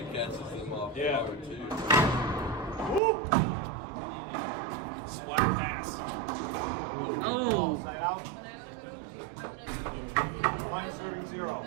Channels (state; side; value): drops out; left; at 3.0 s